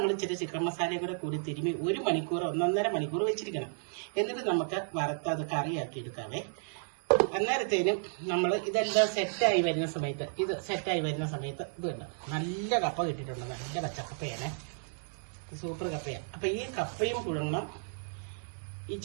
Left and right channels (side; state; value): left; silent; digital silence